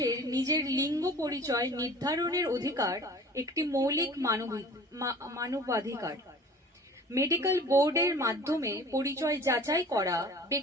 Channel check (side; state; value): both; normal; correlation 0.45